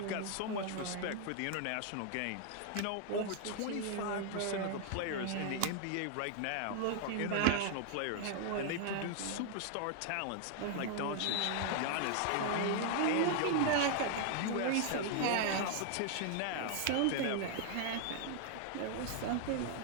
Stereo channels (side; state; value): both; different; correlation 0.00